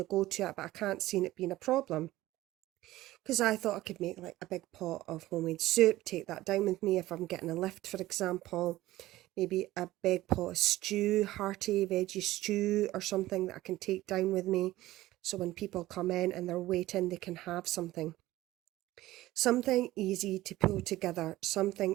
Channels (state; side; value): quieter; left; 16.6 dB